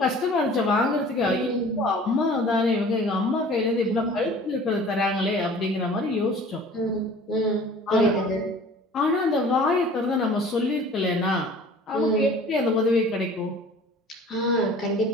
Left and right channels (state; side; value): normal; both; correlation 0.46